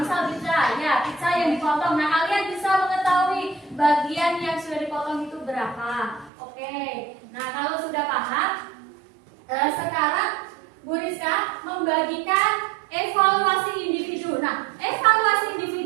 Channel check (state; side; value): drops out; left; at 6.3 s